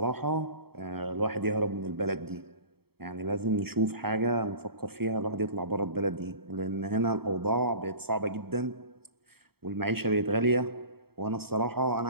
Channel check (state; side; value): late; left; 0.95 ms